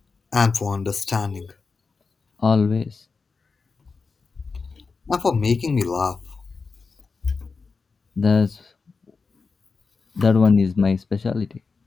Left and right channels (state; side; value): quieter; right; 4.6 dB